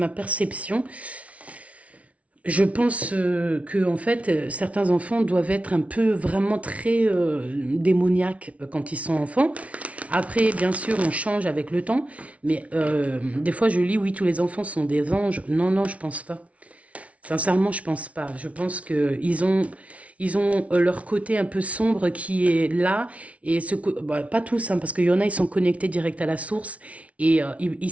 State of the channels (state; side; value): late; left; 0.065 ms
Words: perception. Je pense que en fait, certains enfants doivent être un peu vraiment très démoniaques quand ils sont enfants. Après, bien sûr, on change avec le temps, mais des fois, je lis, oui, tous les enfants sont des anges. Non, non, je pense pas. Sincèrement, je pense pas. Je pense que ils ont leur côté un peu sombre qui est là et pas tous, hein, parce qu'il y en a, ils sont connectés direct à la source et ils